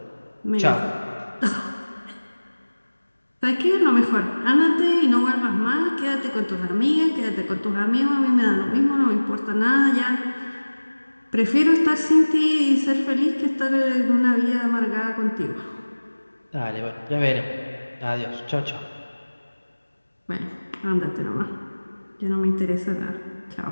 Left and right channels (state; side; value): inverted; both; correlation -1.00